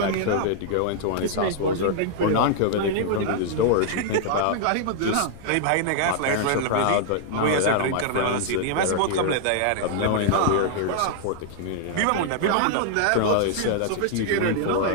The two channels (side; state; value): both; different; correlation -0.01